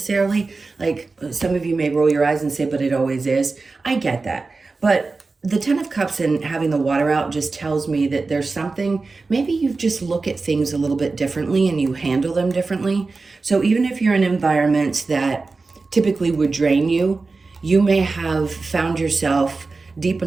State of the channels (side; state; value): left; quieter; 3.9 dB